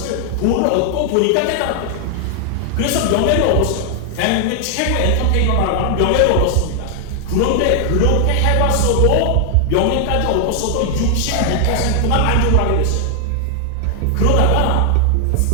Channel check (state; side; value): different; both; correlation 0.00